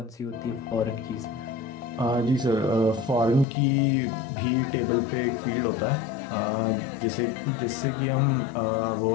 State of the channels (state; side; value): drops out; right; at 3.5 s